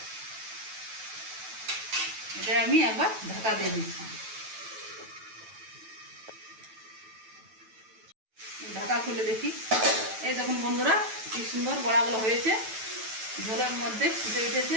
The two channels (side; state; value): left; late; 9.2 ms